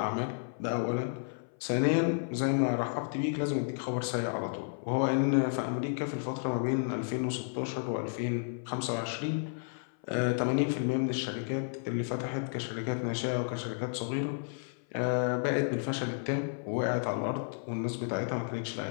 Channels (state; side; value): silent; right; 56 dB below the other